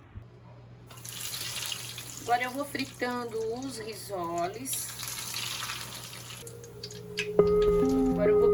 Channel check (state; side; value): identical; both; correlation 1.00